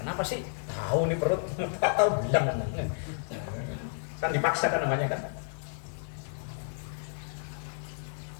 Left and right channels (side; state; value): right; silent; 57 dB below the other